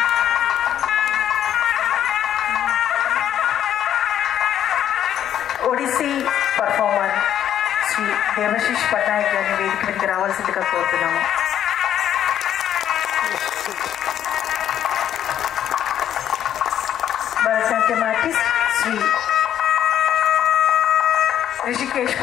Odissi performer Shri దేవశిష్ Patnaik గారిని వేదిక మీదకి రావాల్సిందిగా కోరుతున్నాము. Bharatanatyam artist Shri Rishikesh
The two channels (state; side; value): quieter; right; 10.4 dB